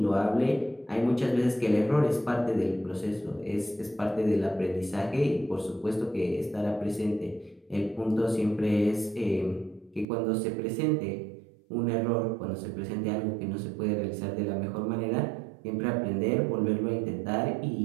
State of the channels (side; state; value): left; drops out; at 10.1 s